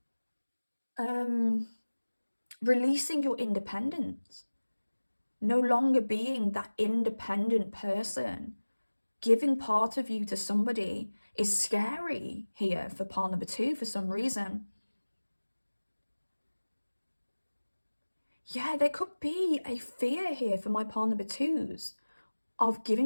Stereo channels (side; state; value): both; inverted; correlation -1.00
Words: releasing your independence. No longer being that independent person. Giving part of you to somebody is scary here for pile number two for some reason. Yeah, there could be a fear here for my pile number twos of